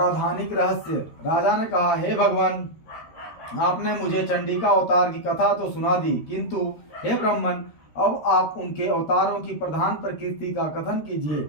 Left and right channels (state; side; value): late; right; 13 ms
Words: रहस्य। राजा ने कहा, हे भगवान, आपने मुझे चंडिका अवतार की कथा तो सुना दी, किंतु हे ब्राह्मण, अब आप उनके अवतारों की प्रधान प्रकृति का कथन कीजिए।